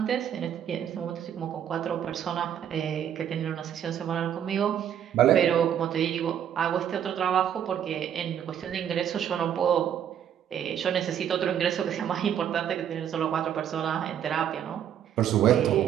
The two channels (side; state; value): left; quieter; 9.5 dB